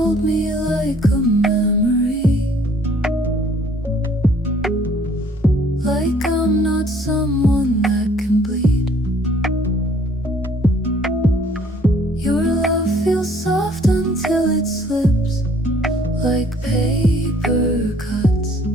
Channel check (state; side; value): normal; both; correlation 0.59